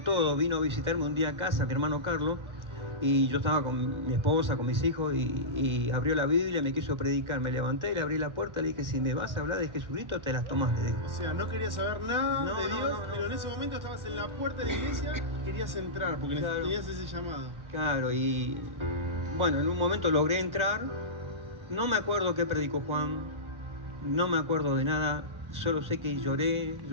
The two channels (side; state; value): left; late; 1.4 ms